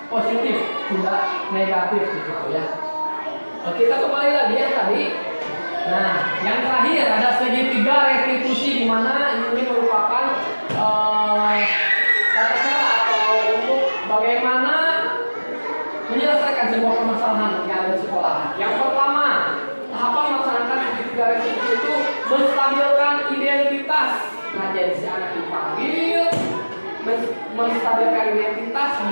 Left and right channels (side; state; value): both; inverted; correlation -1.00